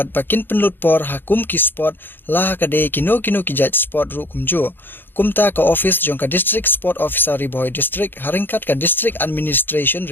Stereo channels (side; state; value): right; late; 0.097 ms